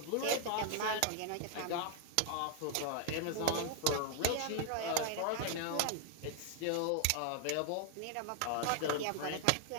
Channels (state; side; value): different; both; correlation 0.00